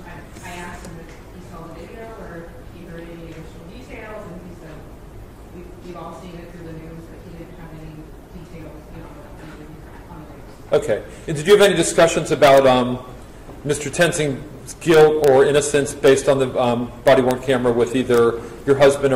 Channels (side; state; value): both; identical; correlation 1.00